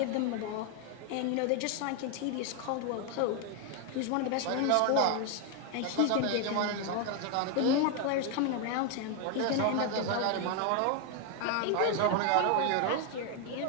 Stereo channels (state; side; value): different; both; correlation 0.01